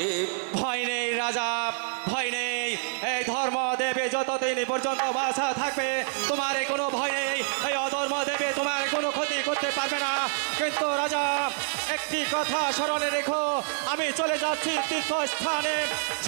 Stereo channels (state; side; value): silent; left; digital silence